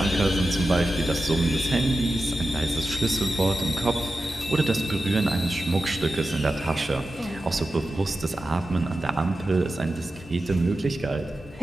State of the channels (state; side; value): normal; both; correlation 0.92